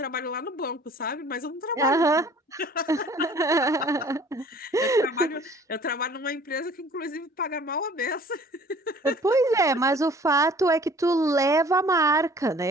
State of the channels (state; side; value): normal; both; correlation 0.51